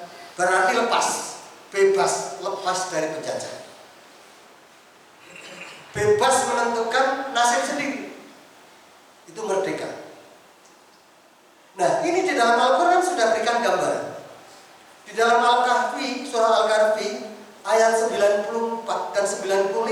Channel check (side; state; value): both; identical; correlation 1.00